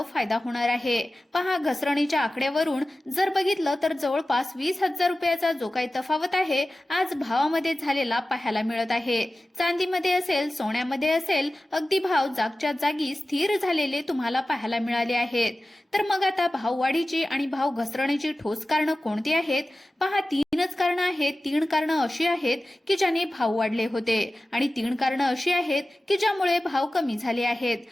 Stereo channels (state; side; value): normal; both; correlation 0.95